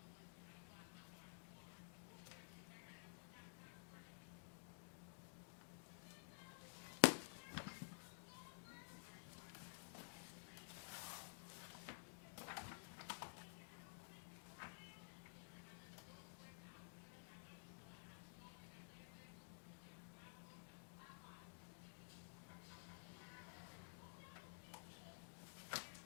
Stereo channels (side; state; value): right; silent; digital silence